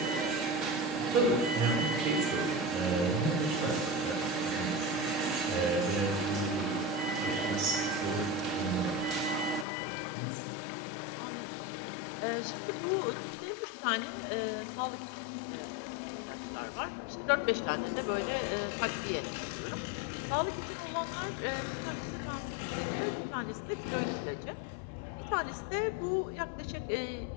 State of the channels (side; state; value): right; drops out; at 9.7 s